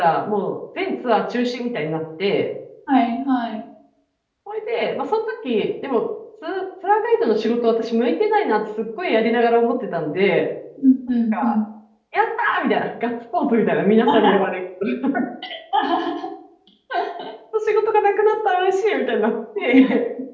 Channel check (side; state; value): both; identical; correlation 1.00